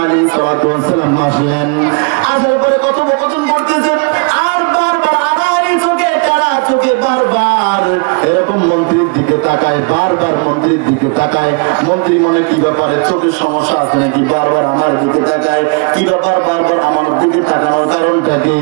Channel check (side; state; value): left; quieter; 34.5 dB